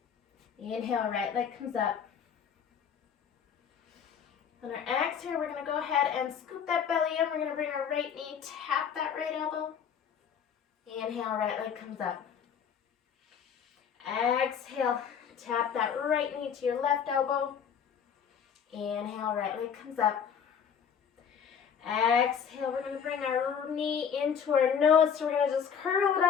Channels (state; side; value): quieter; right; 7.5 dB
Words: Inhale, right leg comes up. On our exhale, we're going to go ahead and scoop that belly in. We're going to bring our right knee, tap that right elbow. Inhale, right leg comes up. Exhale, tap that right knee to your left elbow. Inhale, right leg comes up. Exhale, we're going to bring our knee into our nose, so we're going to just curl it